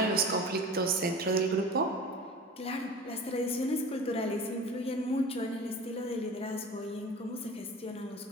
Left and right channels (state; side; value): normal; both; correlation 0.36